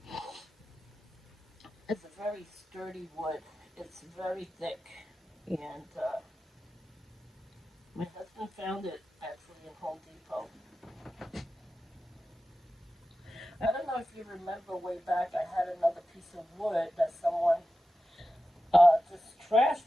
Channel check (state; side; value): normal; both; correlation 0.93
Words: is a very sturdy wood. It's very thick, and my husband found it actually in Home Depot. I don't know if you remember way back, I had another piece of wood that someone just